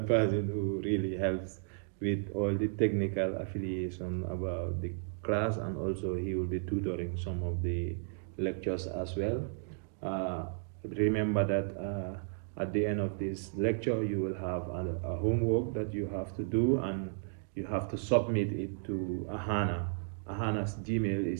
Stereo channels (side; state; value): left; silent; digital silence